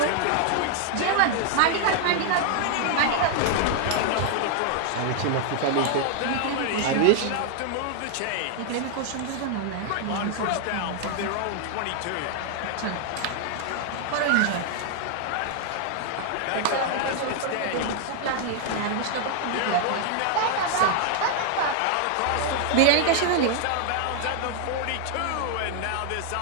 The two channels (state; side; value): different; both; correlation 0.00